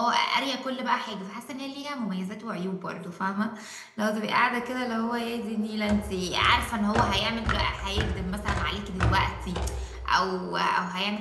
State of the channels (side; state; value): both; identical; correlation 1.00